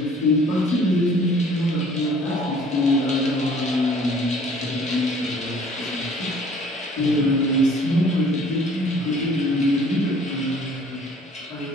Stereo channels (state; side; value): normal; both; correlation 0.54